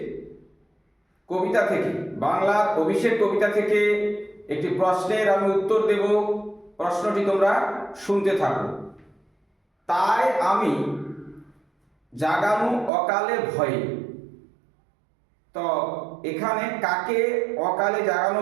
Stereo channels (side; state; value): left; drops out; at 12.9 s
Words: কবিতা থেকে, বাংলার অভিষেক কবিতা থেকে একটি প্রশ্নের আমি উত্তর দেব। প্রশ্নটি তোমরা শুনতে থাকো। তাই আমি জাগানু অকালে ভয়ে। তো এখানে কাকে অকালে জাগানো